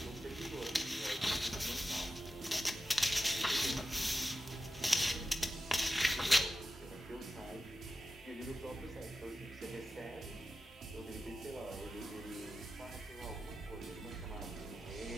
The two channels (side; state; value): both; normal; correlation 0.92